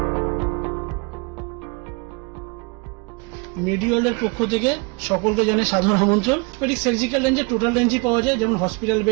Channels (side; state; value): left; quieter; 31.4 dB